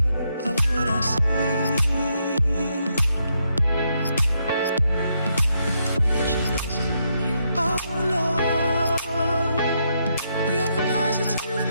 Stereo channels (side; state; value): both; inverted; correlation -0.78